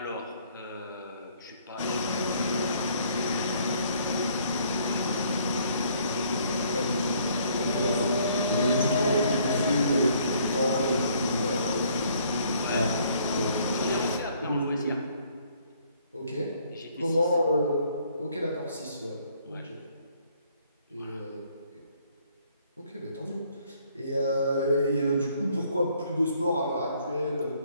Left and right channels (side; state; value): both; inverted; correlation -0.63